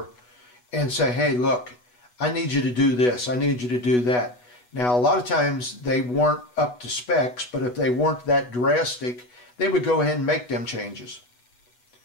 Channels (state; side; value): late; right; 8.2 ms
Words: and say, hey, look, I need you to do this, I need you to do that. Now, a lot of times they weren't up to specs, but if they weren't that drastic, they would go ahead and make them changes.